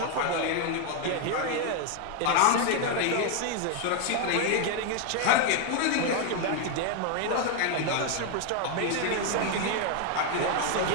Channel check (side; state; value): both; different; correlation 0.00